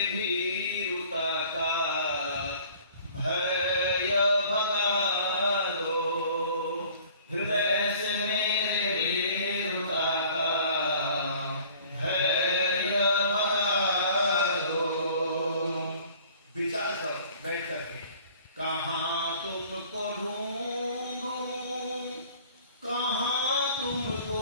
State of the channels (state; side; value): inverted; both; correlation -0.51